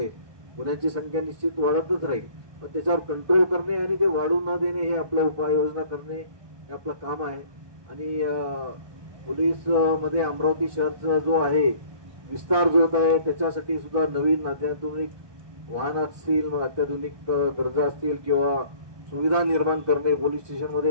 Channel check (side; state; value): left; late; 1.2 ms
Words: गुन्ह्यांची संख्या निश्चित वाढतच राहील. पण त्याच्यावर कंट्रोल करणे आणि ते वाढू न देणे हे आपलं उपाययोजना करणे हे आपलं काम आहे. आणि पोलीस मध्ये अमरावती शहरचा जो आहे विस्तार जो होत आहे त्याच्यासाठी सुद्धा नवीन अत्याधुनिक वाहन असतील, अत्याधुनिक गरजा असतील किंवा सुविधा निर्माण करणे, पोलीस